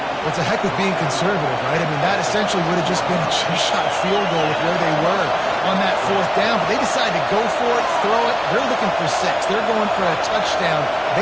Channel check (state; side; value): identical; both; correlation 1.00